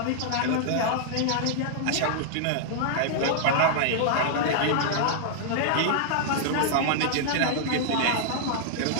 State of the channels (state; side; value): different; both; correlation -0.01